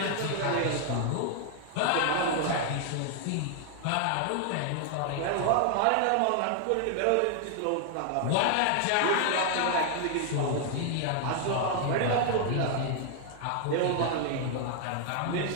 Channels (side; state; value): both; different; correlation 0.00